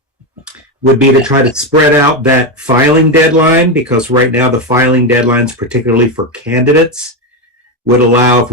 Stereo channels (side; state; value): both; normal; correlation 0.11